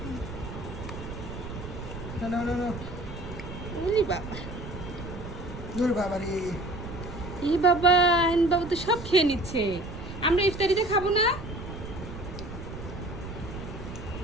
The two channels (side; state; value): right; noise; rumble, 10 dB below the sound